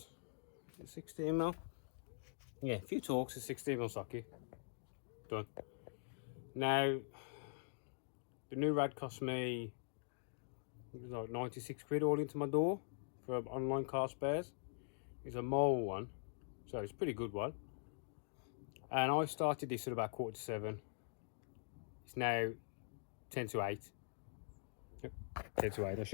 16mm. Yeah, a few Torx, a 16mm socket. Done. Now, the new rad cost me, it was like 96 quid all into my door for online car spares. It's a mole one, so it's a pretty good one. And I started this at about 6:45. It's now 10 to 8. Yep, 10 to 8. I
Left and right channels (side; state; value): right; silent; digital silence